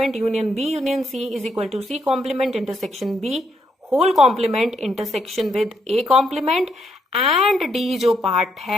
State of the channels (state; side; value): normal; both; correlation 0.76